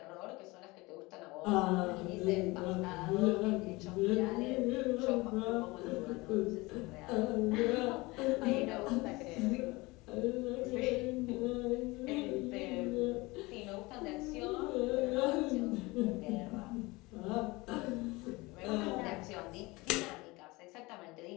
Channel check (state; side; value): quieter; right; 22.9 dB